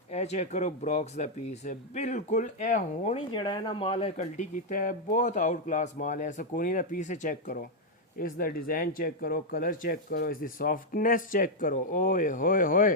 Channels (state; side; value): normal; both; correlation -0.01